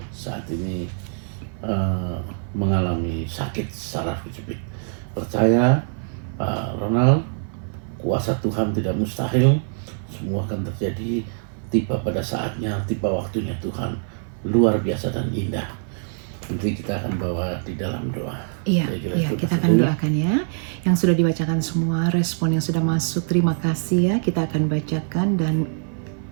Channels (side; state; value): left; silent; 56 dB below the other